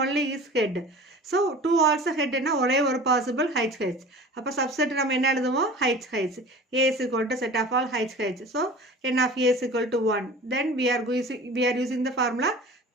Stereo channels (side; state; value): both; normal; correlation 0.39